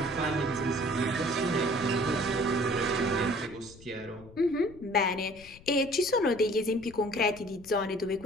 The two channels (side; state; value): left; noise; rumble, 21 dB below the sound